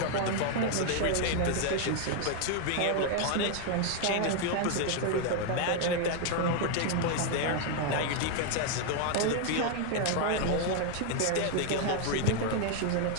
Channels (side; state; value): both; different; correlation 0.00